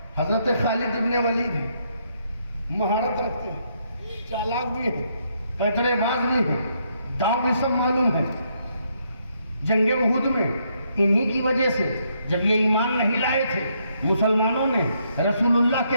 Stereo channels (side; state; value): both; inverted; correlation -0.74